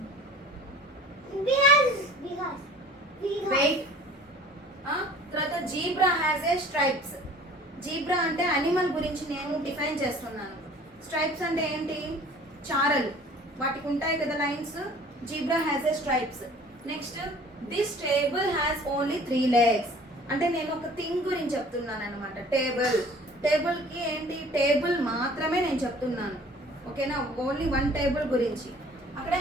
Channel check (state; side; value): normal; both; correlation 0.49